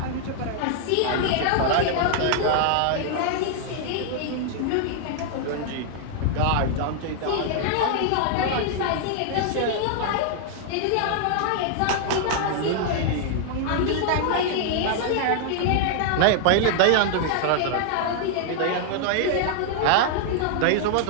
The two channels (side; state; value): both; different; correlation 0.00